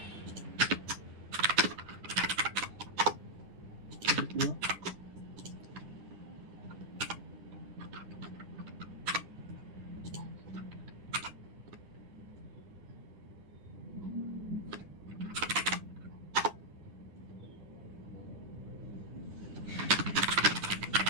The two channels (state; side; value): late; left; 9.9 ms